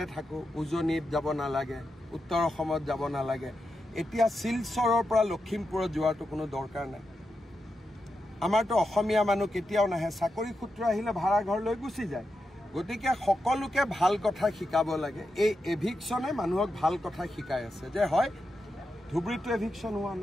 থাকো উজনিত যাব নালাগে উত্তৰ অসমত যাব নালাগে এতিয়া শিলচৰৰ পৰা লখিমপুৰত যোৱাটো কোনো দৰকাৰ নাই আমাৰতো অসমীয়া মানুহ কেতিয়াও নাহে চাকৰি সূত্ৰ আহিলে ভাড়া ঘৰ লৈ গুচি যায় গতিকে সকলোকে ভাল কথা শিকাব লাগে এই এভিকশনে মানুহক ভাল কথা শিকাই আছে যে হয় ধুবুৰীটো এভিকশন হোৱা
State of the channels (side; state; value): both; normal; correlation 0.87